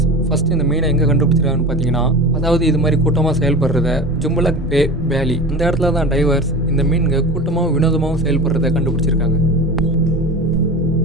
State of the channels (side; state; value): both; normal; correlation 0.31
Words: ஃபஸ்ட்டு இந்த மீனை எங்கே கண்டுபிடிச்சிருக்காங்கன்னு பார்த்தீங்கன்னா, அதாவது இது மாதிரி கூட்டமாக செயல்படுறத ஜும்பலக் பே வேலி இந்த இடத்துல தான் டைவர்ஸ் இந்த மீன்க கூட்டமாகவும் வினோதமாகவும் செயல்படுறத கண்டுபிடிச்சிருக்காங்க.